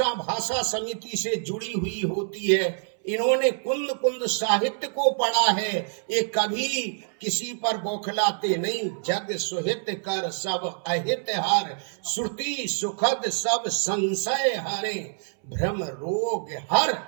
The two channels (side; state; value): left; silent; 61 dB below the other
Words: भाषा समिति से जुड़ी हुई होती है। इन्होंने कुंद कुंद साहित्य को पढ़ा है, ये कभी किसी पर बौखलाते नहीं। जग सुहित कर सब अहित हार, श्रुति सुखद सब संशय हारे, भ्रम रोग हर